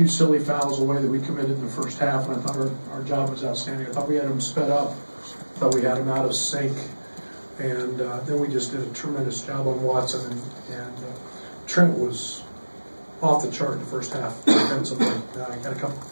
silly fouls away that we committed in the first half, and I thought our job was outstanding. I thought we had them sped up. I thought we had them out of sync. And then we just did a tremendous job on Watson. And Trent was off the chart in the first half defensively. Got a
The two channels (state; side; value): inverted; both; correlation -1.00